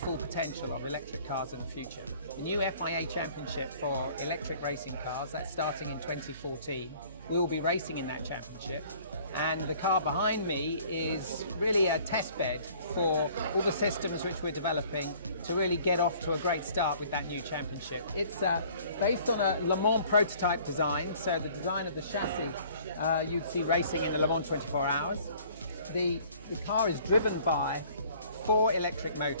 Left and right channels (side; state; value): both; inverted; correlation -0.54